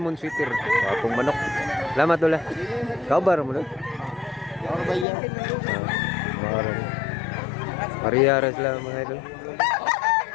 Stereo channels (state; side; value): drops out; right; at 5.1 s